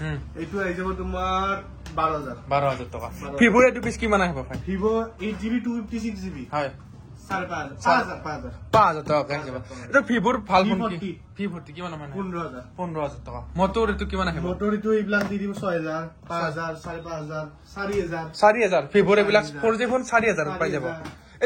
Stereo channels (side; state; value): both; identical; correlation 1.00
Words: এইটো আই যাব তোমাৰ 12000 টাকা ভিভোৰ এটো পিস কিমান আহিব ভাই Vivo 8GB 256GB হয় 5000 টাকা আহিব এটা ভিভোৰ ভাল ফোন কি ভিভোৰ কিমান মানে 15000 টাকা মোটৰ এটো কিমান আহিব মোটৰ এটো ইবলাক দি দিব 6000 5000 4500 4000 ভিভোৰ এবিলাক 4G ফোন 4000 পাই যাব